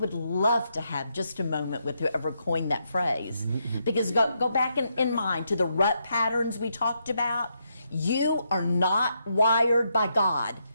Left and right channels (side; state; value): both; inverted; correlation -0.80